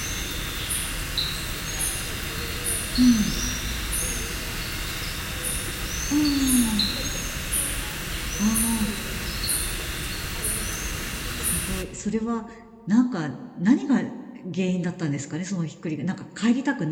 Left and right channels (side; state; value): both; identical; correlation 1.00